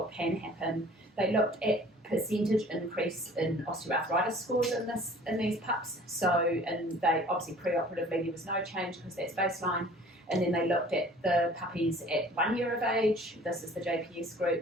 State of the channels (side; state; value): both; normal; correlation 0.49